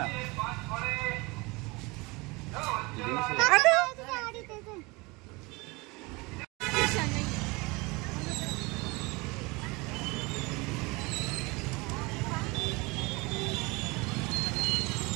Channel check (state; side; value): quieter; left; 25.4 dB